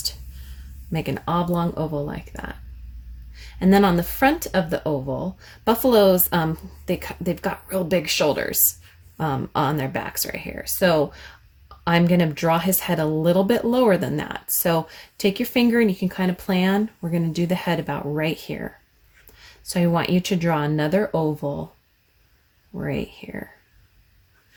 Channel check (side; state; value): both; identical; correlation 1.00